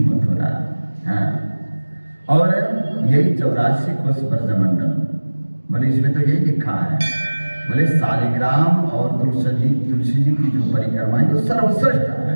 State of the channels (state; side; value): inverted; both; correlation -1.00